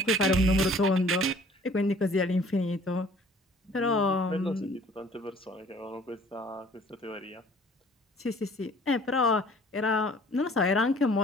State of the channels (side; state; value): both; normal; correlation 0.53